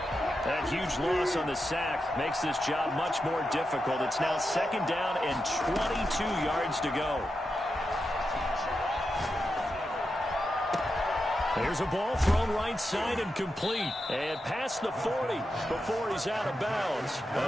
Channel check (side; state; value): both; normal; correlation 0.88